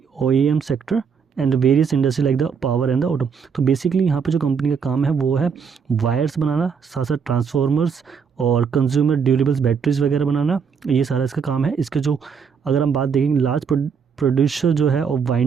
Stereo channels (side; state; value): left; quieter; 6.4 dB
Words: OEM sector and various industry like the power and the auto. तो बेसिकली यहाँ पे जो कंपनी का काम है वो है वायर्स बनाना, साथ साथ ट्रांसफॉर्मर्स और कंज्यूमर ड्यूरेबल्स बैटरीज वगैरह बनाना, ये सारा इसका काम है। इसके जो अगर हम बात देखेंगे लार्ज प्रोड्यूसर जो है और